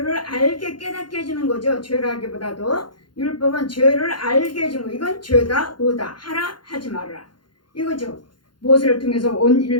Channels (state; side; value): late; right; 0.71 ms